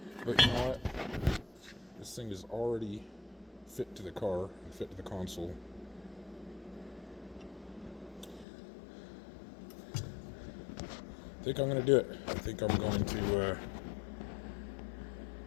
But you know what? This thing is already fit to the car and fit to the console. I think I'm going to do it. I think I'm going to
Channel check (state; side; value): drops out; right; at 8.5 s